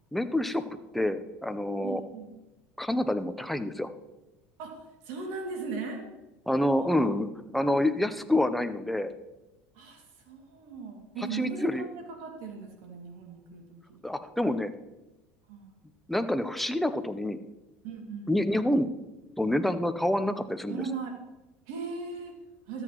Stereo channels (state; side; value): normal; both; correlation 0.84